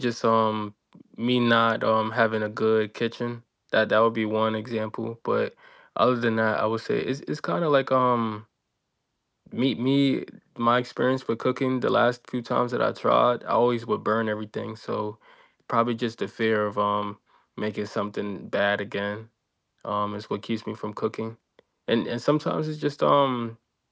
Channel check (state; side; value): identical; both; correlation 1.00